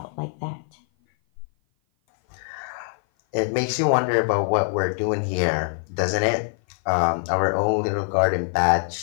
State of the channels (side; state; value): right; silent; 56 dB below the other